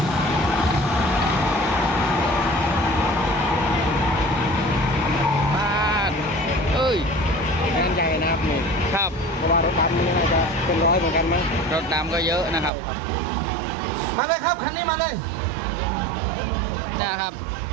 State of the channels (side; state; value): left; drops out; at 12.7 s